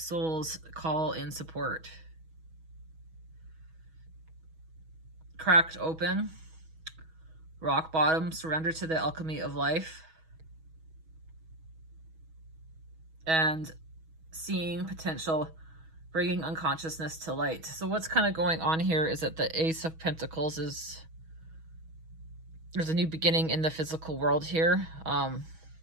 Call in support. Cracked open. Rock bottom. Surrender to the alchemy of life. And seeing potential, bringing unconsciousness to light. So what's kind of going on here is that the Ace of Pentacles is, there's a new beginning in the physical world here.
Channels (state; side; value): late; left; 6.2 ms